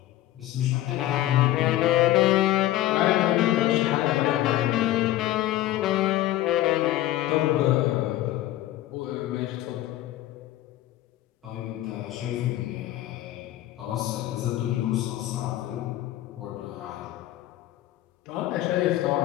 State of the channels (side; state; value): right; quieter; 14.6 dB